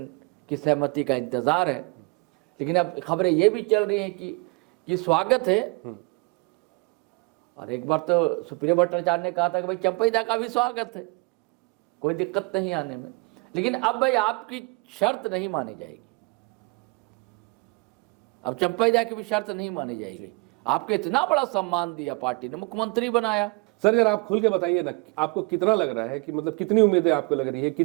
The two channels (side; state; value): left; quieter; 28.6 dB